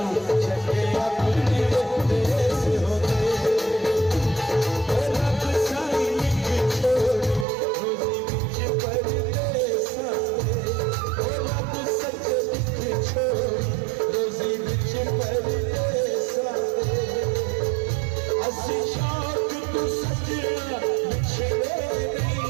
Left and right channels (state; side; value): drops out; left; at 7.5 s